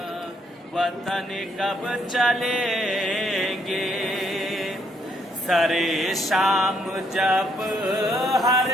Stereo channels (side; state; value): both; normal; correlation 0.72